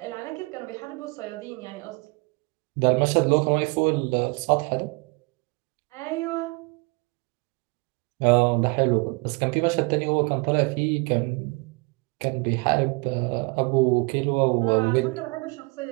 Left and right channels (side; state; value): left; quieter; 28.3 dB